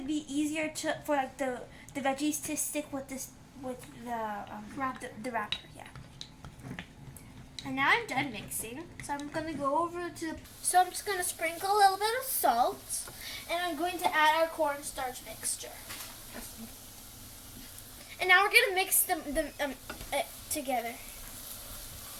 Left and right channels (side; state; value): both; identical; correlation 1.00